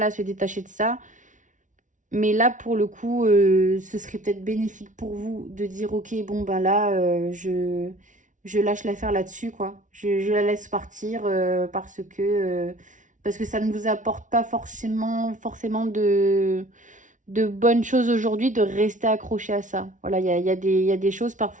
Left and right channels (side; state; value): left; late; 0.37 ms